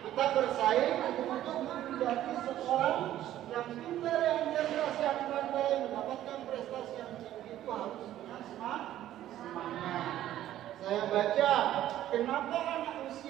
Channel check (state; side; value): quieter; left; 12.8 dB